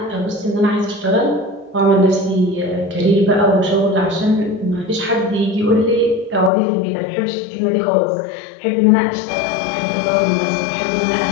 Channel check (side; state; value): right; drops out; at 6.5 s